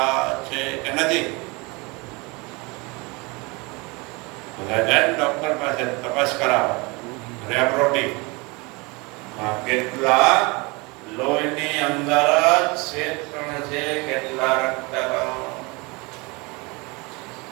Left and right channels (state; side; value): quieter; left; 26.8 dB